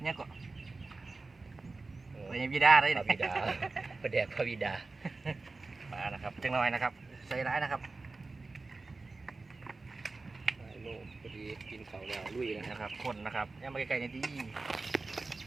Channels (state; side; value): quieter; left; 3.6 dB